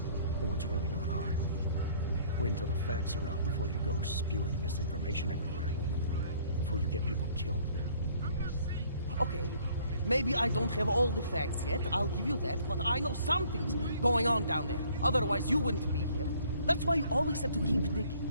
or what's really going on. Wait until the facts are out before you go spewing misinformation everywhere. Before you get people killed. Okay, maybe I don't have all the facts yet, I'll give you that, but I know something's going on down there. Otherwise you wouldn't be here. That's why you always have to keep digging.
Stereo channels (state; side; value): inverted; both; correlation -0.59